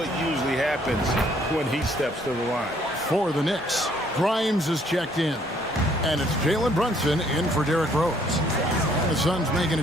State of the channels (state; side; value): normal; both; correlation 0.64